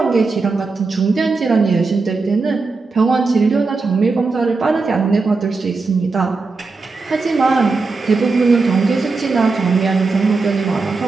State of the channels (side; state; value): left; quieter; 4.0 dB